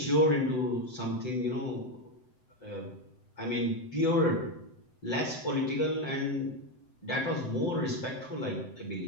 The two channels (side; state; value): right; late; 7.8 ms